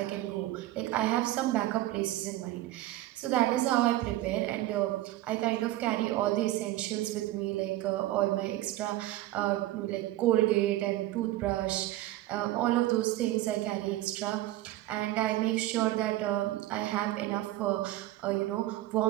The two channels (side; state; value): left; quieter; 15.7 dB